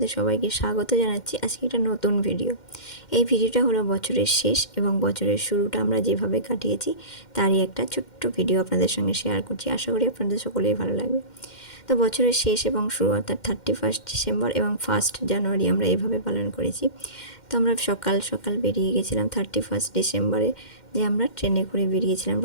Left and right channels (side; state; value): right; late; 2.1 ms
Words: সবাইকে স্বাগত জানাচ্ছি। আজকে একটা নতুন ভিডিও। এই ভিডিওটা হলো বছরের শেষ এবং বছরের শুরুটা আমরা যেভাবে কাটিয়েছি তারই একটা ছোট্ট ভিডিও আপনাদের সঙ্গে শেয়ার করছি। আশা করি আপনাদের সকলেই ভালো লাগবে। তো বছরের শেষ এবং শুরু অর্থাৎ 31 ডিসেম্বর এবং 1 জানুয়ারি আমরা এভাবে পালন করেছি। তো আমরা সকাল সকাল বেরিয়ে গেছিলাম 31 ডিসেম্বরে, যে আমরা ট্রেনে করে বেরিয়েছিলাম,